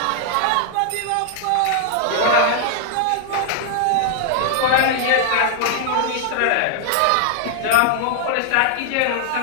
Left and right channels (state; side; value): different; both; correlation -0.01